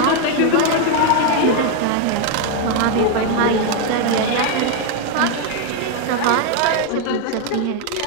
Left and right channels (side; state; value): both; different; correlation 0.01